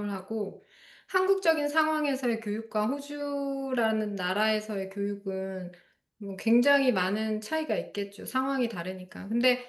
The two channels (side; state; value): both; identical; correlation 1.00